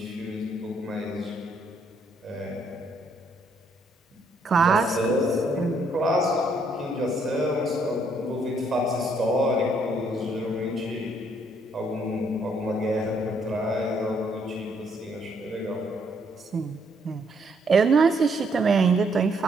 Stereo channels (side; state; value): both; normal; correlation 0.70